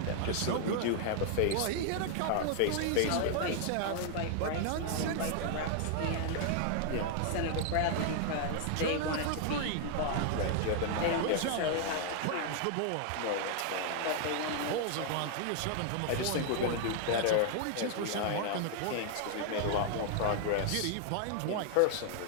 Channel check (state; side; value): different; both; correlation 0.00